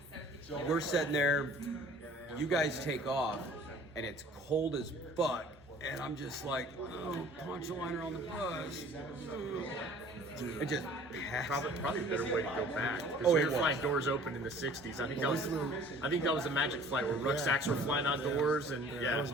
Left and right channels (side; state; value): both; normal; correlation 0.49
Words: we're sitting there, you guys take off, and it's cold as fuck. And I'm just like, oh, poncho liner on the bus. It just probably a better way to go back. Oh, we were flying doors open in the '60s. I think that was a magic flight where rucksacks were flying outdoors, and that was